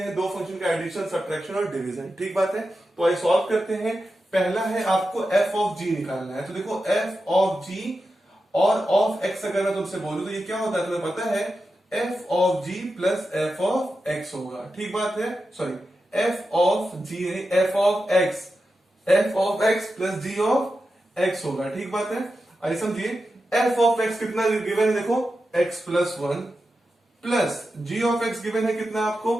दो फंक्शन का एडिशन, सब्ट्रैक्शन और डिवीजन। ठीक बात है, तो आई सॉल्व करते हैं। पहला है आपको f of g निकालना है। तो देखो f of g और ऑफ x अगर मैं तुमसे बोलूं तो ये क्या होता है, तुम्हें पता है f of g plus f of x होगा। ठीक बात है, सॉरी f of g नहीं f of x plus g of x होगा। ठीक बात है, आइए समझिए। f of x कितना गिवन है, देखो x plus 1 plus g of x given है कितना आपको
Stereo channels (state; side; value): normal; both; correlation 0.90